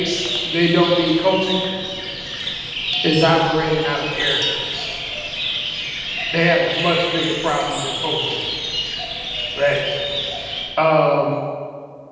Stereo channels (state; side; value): identical; both; correlation 1.00